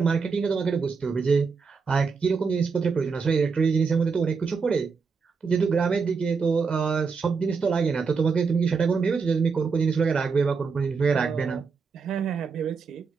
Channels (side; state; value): left; quieter; 5.2 dB